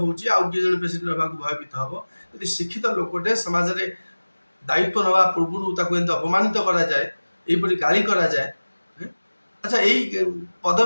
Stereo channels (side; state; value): both; inverted; correlation -1.00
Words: आउ कि जने प्रेसिडेंट होबा भयभीत हब यदि शिक्षित लोकटे समाज रे दायित्व नवा पूर्व ताको एंत अपमानित करा जाए एपरि गाली करा जाए। अच्छा यही